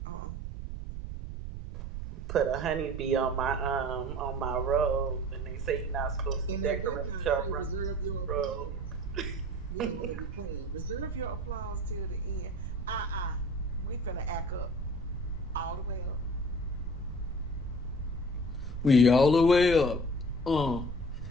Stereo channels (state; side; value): noise; right; rumble, 6 dB below the sound